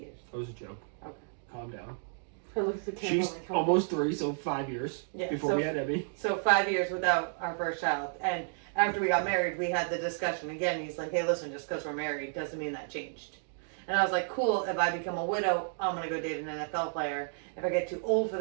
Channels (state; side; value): silent; left; digital silence